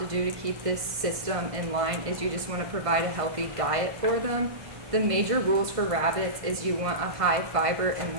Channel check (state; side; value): late; left; 1.6 ms